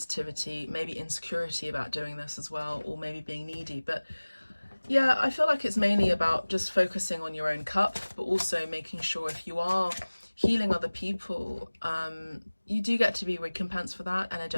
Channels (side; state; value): both; inverted; correlation -1.00